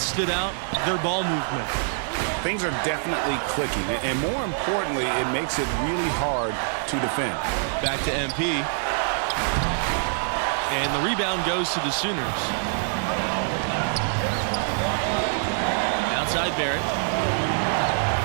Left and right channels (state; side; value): silent; left; digital silence